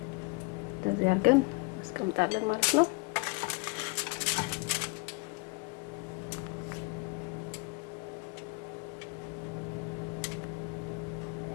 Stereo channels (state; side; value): quieter; right; 29.8 dB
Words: እንደዚህ አድርገን አስቀምጣለን ማለት ነው።